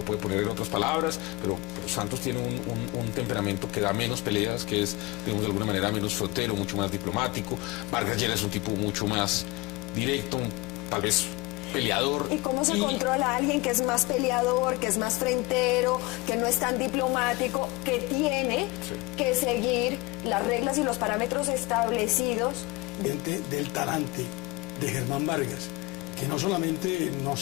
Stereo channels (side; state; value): right; quieter; 22.3 dB